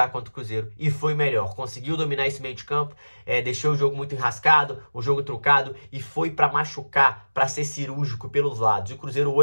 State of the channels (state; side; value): inverted; both; correlation -1.00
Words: contra o Cruzeiro e foi melhor. Conseguiu dominar esse meio de campo, deixou o jogo muito enrascado, o jogo truncado e foi pra machucar, pra ser cirúrgico pelos lados. E o Cruzeiro